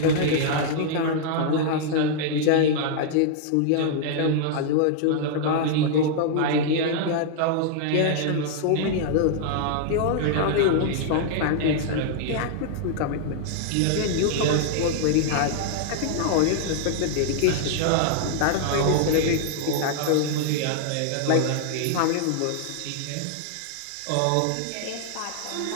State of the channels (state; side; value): different; both; correlation -0.01